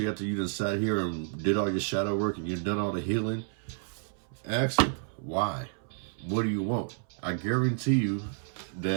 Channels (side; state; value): left; silent; 58 dB below the other